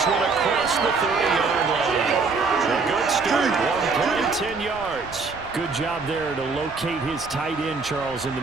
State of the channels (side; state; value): left; quieter; 4.4 dB